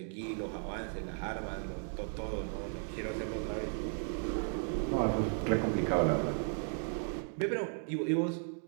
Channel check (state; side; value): silent; left; 54 dB below the other